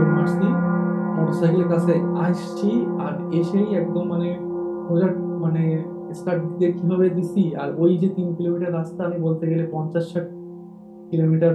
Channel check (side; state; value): both; identical; correlation 1.00